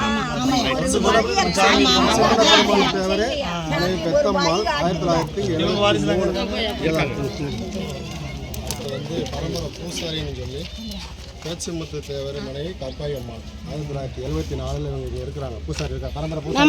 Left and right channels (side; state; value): both; identical; correlation 1.00